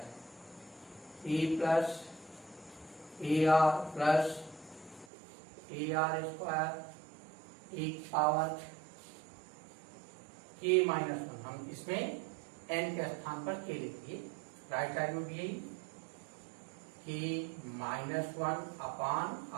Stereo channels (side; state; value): left; drops out; at 5.1 s